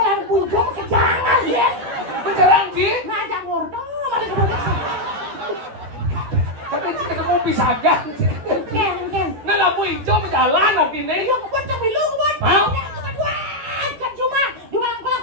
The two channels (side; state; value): left; late; 13 ms